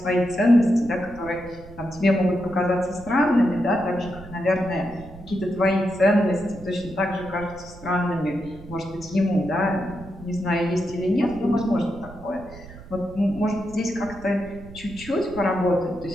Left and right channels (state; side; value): noise; right; rumble, 17 dB below the sound